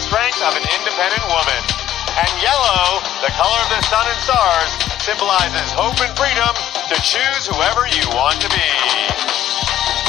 of an independent woman, and yellow, the color of the sun and stars, symbolizes hope and freedom to choose whoever you want to be.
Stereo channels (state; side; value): quieter; right; 12.2 dB